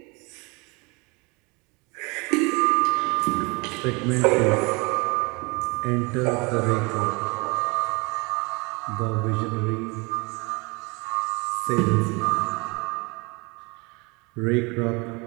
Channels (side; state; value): left; quieter; 27.8 dB